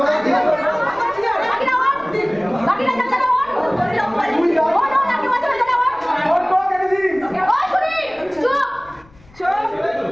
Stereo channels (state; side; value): noise; left; rumble, 27 dB below the sound